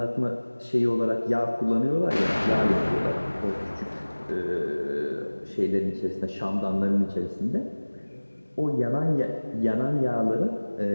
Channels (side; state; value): both; inverted; correlation -1.00